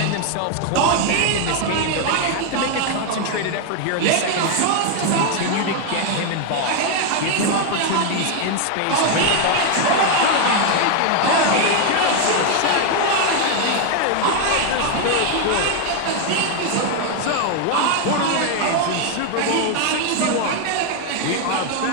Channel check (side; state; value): both; different; correlation 0.01